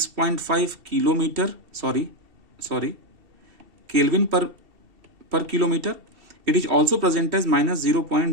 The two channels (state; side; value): late; left; 2.7 ms